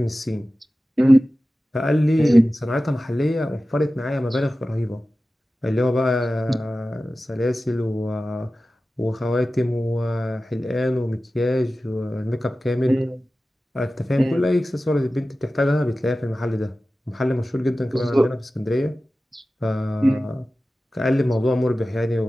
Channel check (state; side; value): normal; both; correlation 0.95